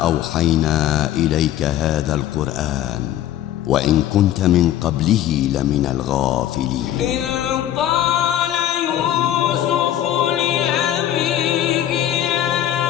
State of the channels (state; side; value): quieter; right; 11.9 dB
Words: إليك هذا القرآن وإن كنت من قبله لمن الغافلين. إذ قال يوسف لأبيه يا